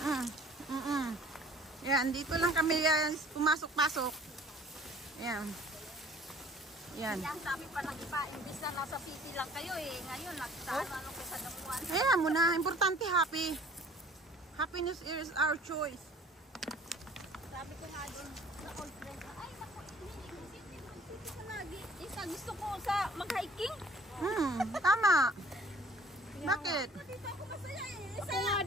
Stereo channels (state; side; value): normal; both; correlation 0.51